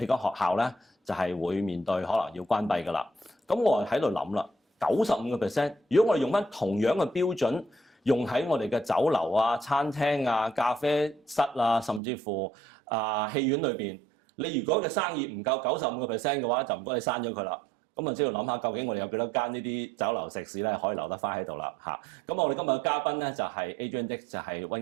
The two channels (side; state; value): left; drops out; at 12.0 s